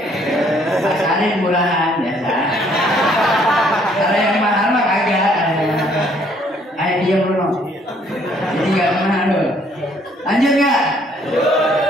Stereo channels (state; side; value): normal; both; correlation 0.64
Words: Pasarin murahan biasa. Kalau yang mahal mah kagak. Ayo diam Bruno. Jadi gak mahal loh. Lanjut gak?